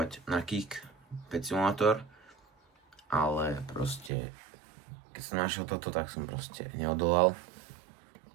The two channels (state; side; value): drops out; left; at 4.1 s